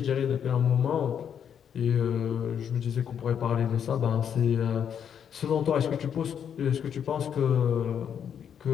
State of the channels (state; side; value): quieter; right; 8.3 dB